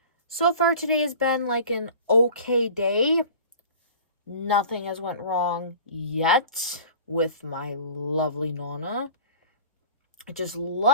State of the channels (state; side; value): inverted; both; correlation -0.42